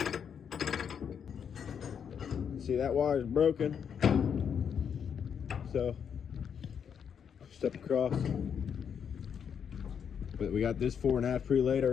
See, that wire is broken, so step across. But we got this 4.5 pre-laid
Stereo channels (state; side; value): quieter; right; 7.6 dB